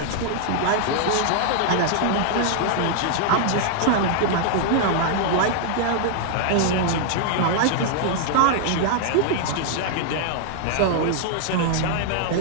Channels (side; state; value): both; different; correlation 0.00